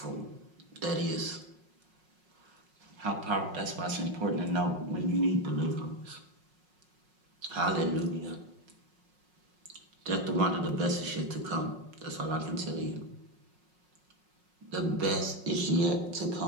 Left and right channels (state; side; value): late; left; 5.5 ms